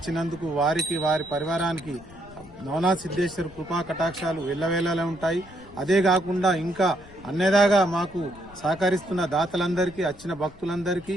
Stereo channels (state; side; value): noise; left; rumble, 22 dB below the sound